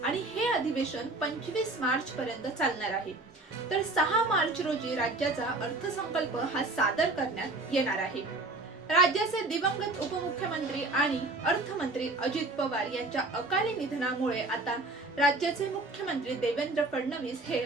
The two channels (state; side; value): quieter; left; 3.1 dB